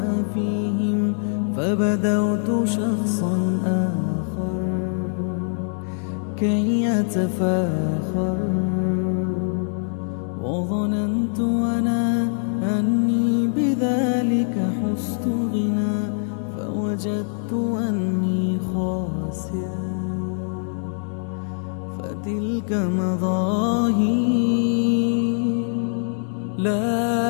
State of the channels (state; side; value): silent; right; digital silence